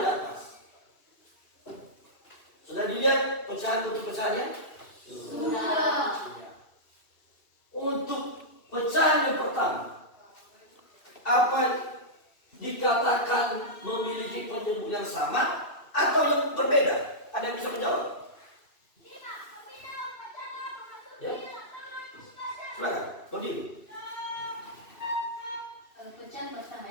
atas, sudah dilihat pecahan untuk pecahannya? Sudah. Untuk pecahan yang pertama, apa dikatakan memiliki penyebut yang sama atau yang berbeda? Ada yang bisa menjawab? Ya, silakan. Begini. Pecahan pertama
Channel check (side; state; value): right; late; 2.7 ms